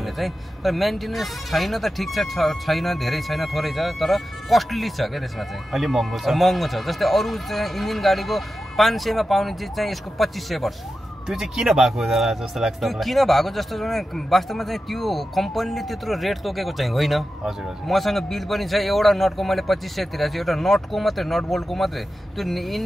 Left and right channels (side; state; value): both; normal; correlation 0.92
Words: चाहिँ। तर मेन्टेनेन्स छैन त ठिक छ, छैन धेरै छैन, थोरै छ, तर कस्टली छ क्या त्यसमा चाहिँ, अलि महँगो छ। जस्तै अरू चाहिँ इन्जिन गाडीको 500 मा पाउने चिज चाहिँ यसको 2500 पर्छ। त्यो चाहिँ किन भएको जस्तो लाग्छ? त्यो किन भएको जस्तो वास्तवमा चाहिँ त्यो कम्पनीले त्यत्रो रेट तोकेको चाहिँ होइन। हजुर हजुर। मसँग बिल पनि छ, एउटा नटको मैले 2500 तिरेको छु, एउटा नटको मात्रै, नट बोल्टको मात्रै। त्यो